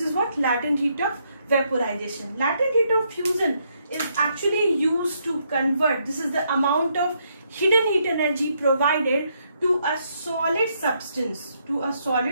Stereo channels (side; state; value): both; inverted; correlation -0.75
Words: what? Latent heat of vaporization. Latent heat of fusion is actually used to convert, this is the amount of hidden heat energy provided to a solid substance, to